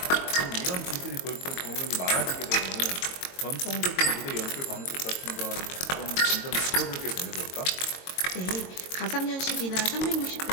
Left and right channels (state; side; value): late; right; 22 ms